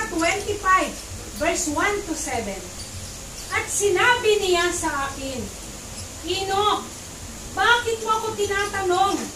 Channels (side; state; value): both; identical; correlation 1.00